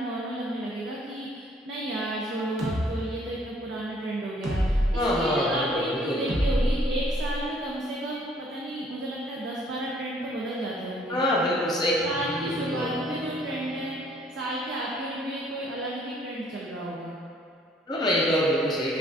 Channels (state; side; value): normal; both; correlation 0.61